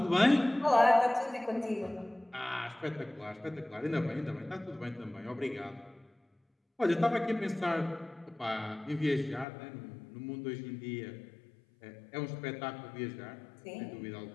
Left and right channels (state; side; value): drops out; right; at 9.5 s